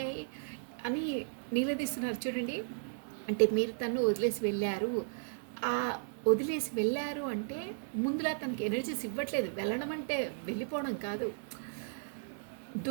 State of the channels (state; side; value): silent; left; digital silence